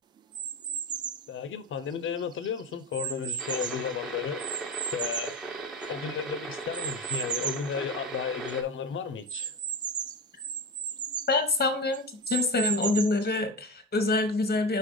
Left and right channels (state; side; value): normal; both; correlation 0.22